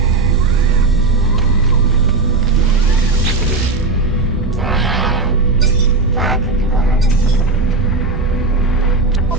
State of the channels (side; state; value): left; quieter; 3.7 dB